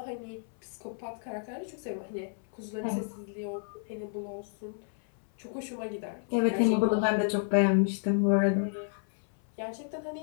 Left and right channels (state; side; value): silent; right; 57 dB below the other